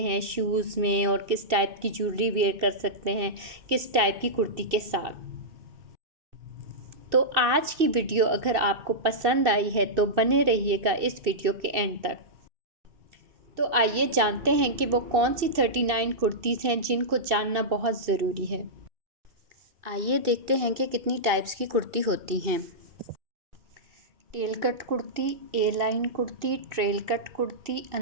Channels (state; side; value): late; left; 2.6 ms